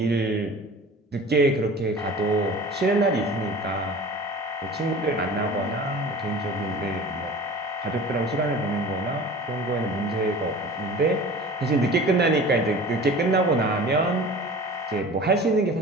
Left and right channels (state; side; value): normal; both; correlation 0.39